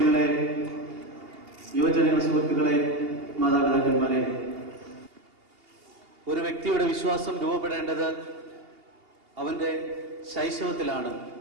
യുവജന സുഹൃത്തുക്കളെ, മാതാപിതാക്കന്മാരെ, ഒരു വ്യക്തിയുടെ വിശ്വാസം രൂപപ്പെടേണ്ടത് അവന്റെ ശൈശവത്തിലാണ്.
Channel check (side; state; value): left; late; 2.8 ms